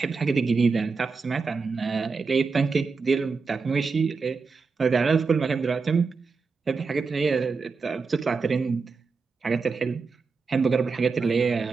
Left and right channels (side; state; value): left; quieter; 4.7 dB